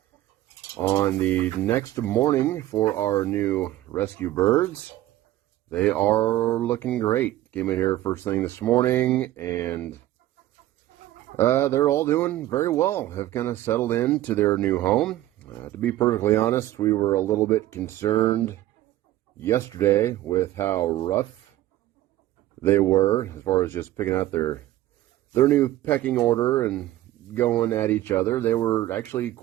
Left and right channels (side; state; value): left; quieter; 14.7 dB